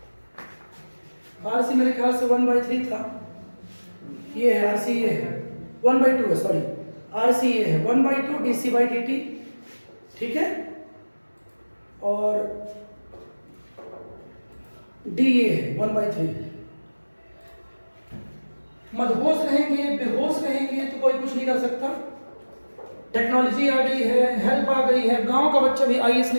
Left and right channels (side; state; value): both; inverted; correlation -1.00